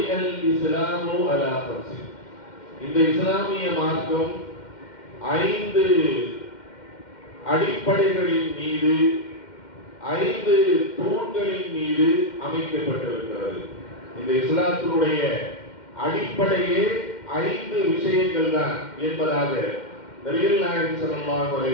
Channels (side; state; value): right; late; 2.1 ms